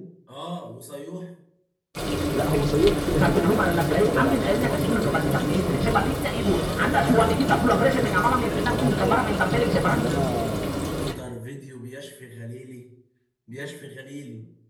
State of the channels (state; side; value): identical; both; correlation 1.00